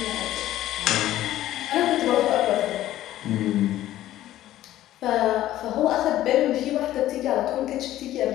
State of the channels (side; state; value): right; quieter; 13.9 dB